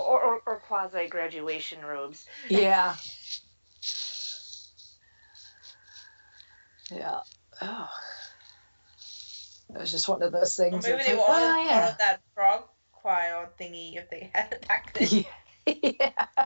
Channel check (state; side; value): inverted; both; correlation -1.00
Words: quasi graduation robes. Yeah. Yeah. Oh. It was just one of those things. Or maybe they were all part of that frog choir thingy if they had it back then. Yeah.